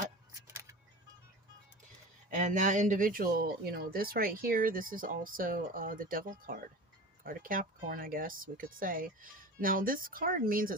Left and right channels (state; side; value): normal; both; correlation 0.34